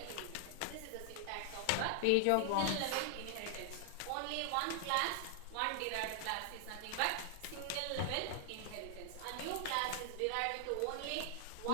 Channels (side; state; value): both; different; correlation 0.00